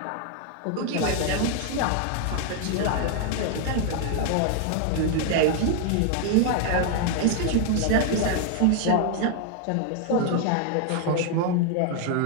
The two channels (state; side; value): different; both; correlation 0.00